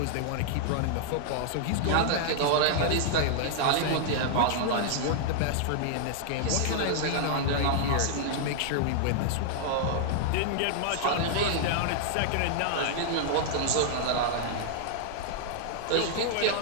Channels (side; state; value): both; different; correlation -0.01